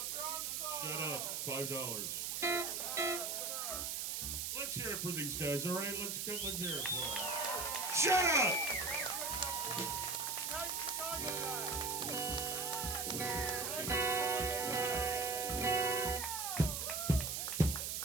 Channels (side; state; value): right; noise; hiss, 1 dB below the sound